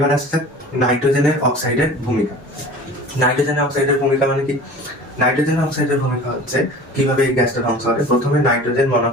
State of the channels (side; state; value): both; normal; correlation 0.41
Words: আসছে নাইট্রোজেনের অক্সাইডের ভূমিকা। নাইট্রোজেনের অক্সাইডের ভূমিকা মানে কি? নাইট্রোজেন অক্সাইডের ভূমিকা হচ্ছে কিভাবে এই গ্যাসটা ধ্বংস করে। প্রথমে নাইট্রোজেন